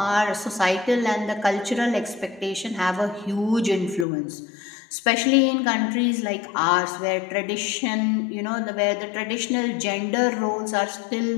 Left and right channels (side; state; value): right; drops out; at 4.0 s